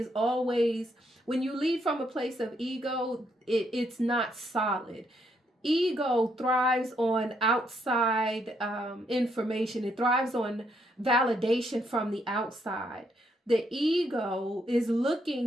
always, when you lead from a place of ego, it's not solid. Ego thrives on outside information. It thrives on validation from the outside. The ego is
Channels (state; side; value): normal; both; correlation 0.74